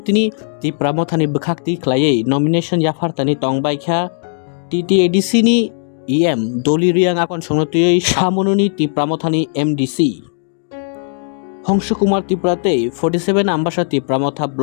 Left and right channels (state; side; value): silent; right; digital silence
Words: তিনি তি প্রামথানি বখাকতি ख्लायै নমিনেশন ইয়াফারতানি টংবাইখা TTADC ni EM দলি রিয়াং আকন সংনতিयै সামনুনি তি প্রামথানি MDC হংস কুমার ত্রিপুরাতে 47 আম্বাসা তি প্রামথা